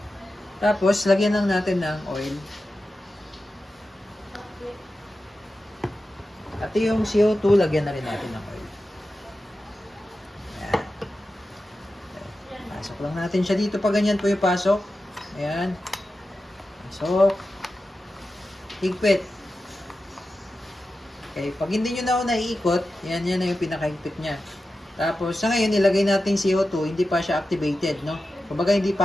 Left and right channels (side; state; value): both; normal; correlation 0.92